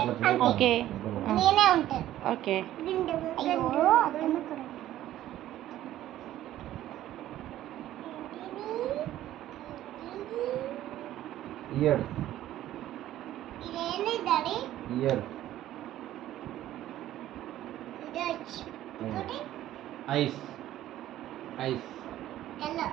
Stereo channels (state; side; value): quieter; left; 13.4 dB